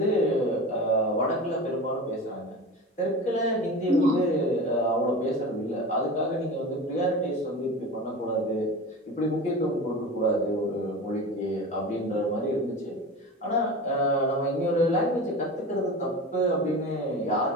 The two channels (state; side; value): normal; both; correlation 0.31